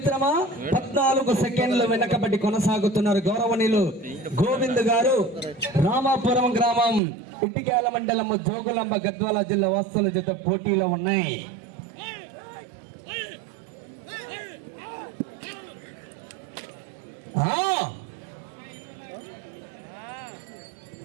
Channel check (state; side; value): drops out; left; at 7.0 s